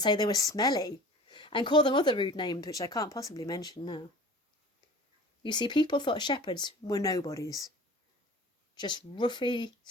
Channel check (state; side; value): normal; both; correlation 0.42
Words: say they were smelly, and call them other rude names which I can't possibly mention now. You see, people thought shepherds were nobodies, just roughy,